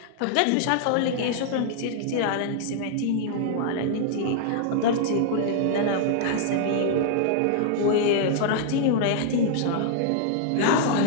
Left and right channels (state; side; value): different; both; correlation -0.01